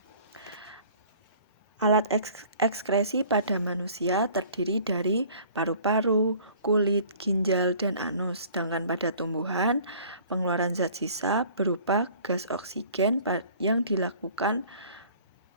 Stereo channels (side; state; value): both; inverted; correlation -0.50